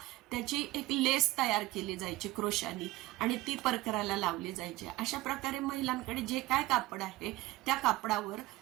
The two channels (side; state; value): left; quieter; 18.5 dB